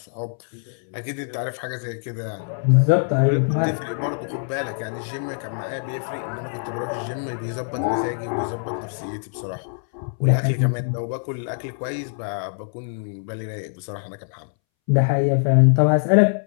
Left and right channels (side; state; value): right; silent; 63 dB below the other